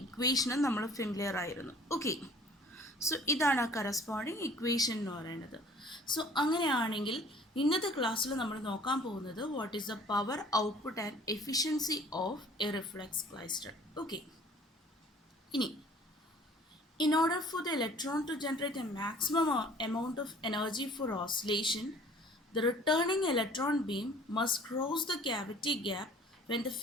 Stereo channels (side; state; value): both; normal; correlation 0.51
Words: ഇക്വേഷനും നമ്മൾ ഫെമിലിയർ ആയിരുന്നു. ഓക്കെ, സോ ഇതാണ് ആ കറസ്പോണ്ടിങ് ഇക്വേഷൻ എന്ന് പറയുന്നത്. സോ അങ്ങനെയാണെങ്കിൽ ഇന്നത്തെ ക്ലാസ്സിൽ നമ്മൾ നോക്കാൻ പോകുന്നത് what is the power output and efficiency of a reflex klystron. Okay, ഇനി in order for the electron to generate a maximum amount of energy for oscillation, the returning electron beam must cross the cavity gap when the